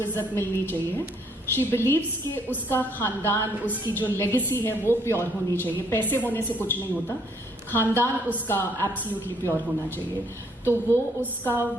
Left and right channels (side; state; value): both; normal; correlation 0.67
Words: इज्जत मिलनी चाहिए। शी बिलीव्स कि उसका खानदान, उसकी जो लेगेसी है वो प्योर होनी चाहिए. पैसे होने से कुछ नहीं होता, खानदान उसका एब्सोल्युटली प्योर होना चाहिए. तो वो उसका